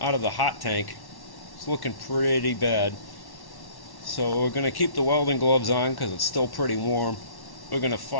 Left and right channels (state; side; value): late; right; 1.1 ms